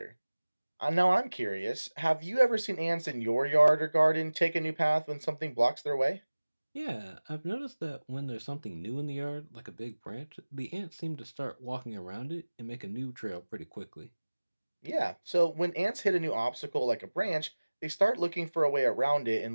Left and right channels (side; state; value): both; inverted; correlation -1.00